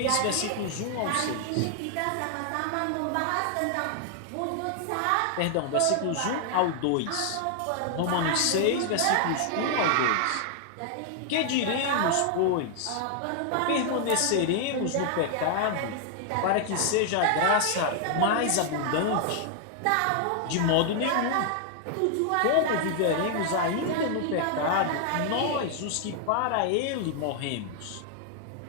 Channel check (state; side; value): different; both; correlation 0.00